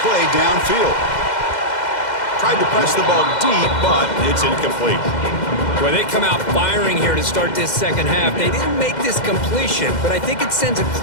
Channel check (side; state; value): right; late; 2.1 ms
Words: play downfield. Tried to press the ball deep, but it's incomplete. Well, they come out firing here to start this second half. They didn't make this completion, but I think it sends a